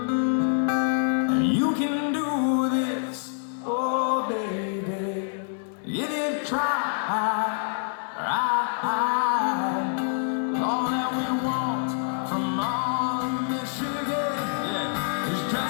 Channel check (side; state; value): right; silent; 61 dB below the other